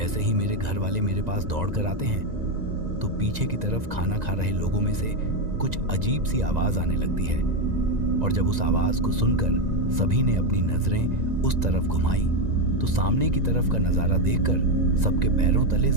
ही मेरे घर वाले मेरे पास दौड़कर आते हैं तो पीछे की तरफ खाना खा रहे लोगों में से कुछ अजीब सी आवाज आने लगती है और जब उस आवाज को सुनकर सभी ने अपनी नजरें उस तरफ घुमाई तो सामने की तरफ का नजारा देखकर सबके पैरों तले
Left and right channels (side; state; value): left; late; 1.9 ms